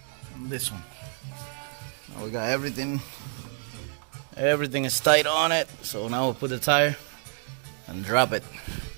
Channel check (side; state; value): left; silent; 55 dB below the other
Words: And this one. Now we got everything. Everything is tight on it. So now we'll put the tire and drop it.